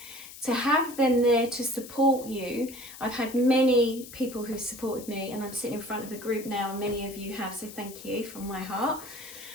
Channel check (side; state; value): left; noise; hiss, 15 dB below the sound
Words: to have them there to support you. I've had many people who supported me, and I'm sitting in front of a group now, and many of you have, so thank you from my heart.